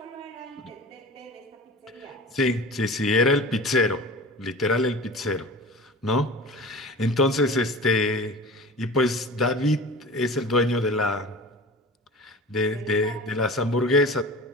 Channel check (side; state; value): both; normal; correlation 0.37